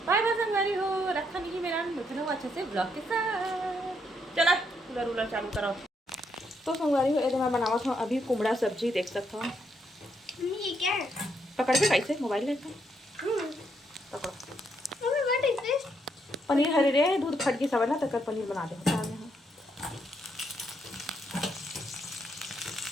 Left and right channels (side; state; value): both; normal; correlation 0.76